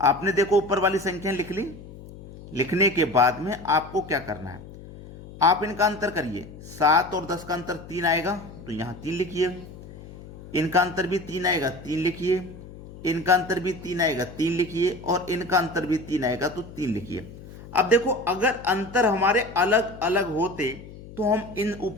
देखो ऊपर वाली संख्या लिख ली, लिखने के बाद में आपको क्या करना है, आप इनका अंतर करिए। 7 और 10 का अंतर 3 आएगा तो यहां 3 लिखिए, इनका अंतर भी 3 आएगा 3 लिखिए, इनका अंतर भी 3 आएगा 3 लिखिए, और इनका अंतर भी 3 आएगा तो 3 लिखिए। अब देखो अगर अंतर हमारे अलग अलग होते तो हम इन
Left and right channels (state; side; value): noise; left; hum, 16 dB below the sound